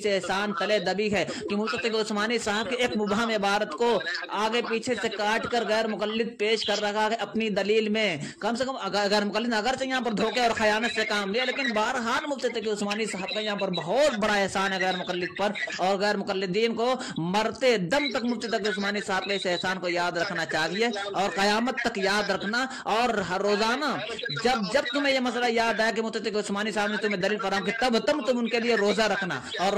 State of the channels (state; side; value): identical; both; correlation 1.00